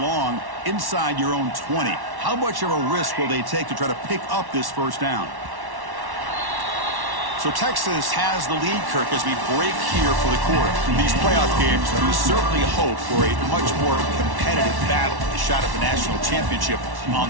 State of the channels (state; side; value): late; left; 1.1 ms